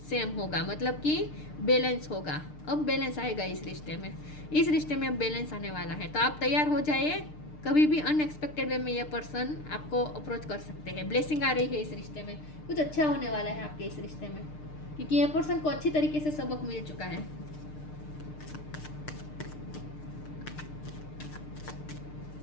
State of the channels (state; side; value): late; right; 6.6 ms